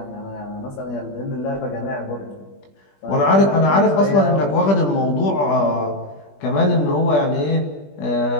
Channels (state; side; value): late; right; 20 ms